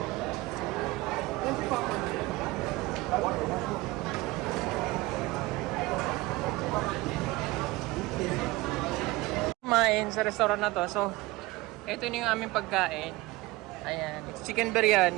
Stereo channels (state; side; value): quieter; left; 20.6 dB